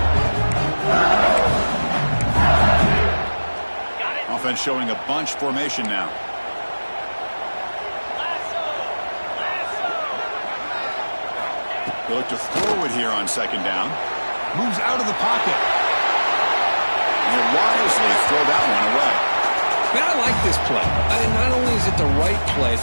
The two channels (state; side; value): inverted; both; correlation -1.00